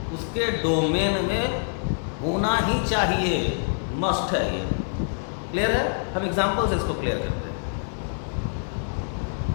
उसके डोमेन में होना ही चाहिए, मस्ट है ये। क्लियर है? हम एग्जांपल से इसको क्लियर करते हैं।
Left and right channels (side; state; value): right; silent; digital silence